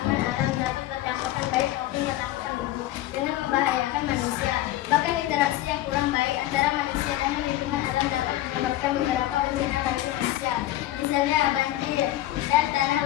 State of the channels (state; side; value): quieter; right; 14.8 dB